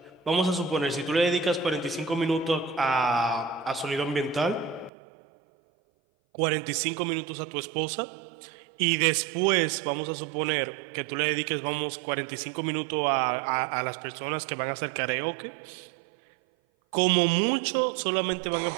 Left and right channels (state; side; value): drops out; left; at 4.9 s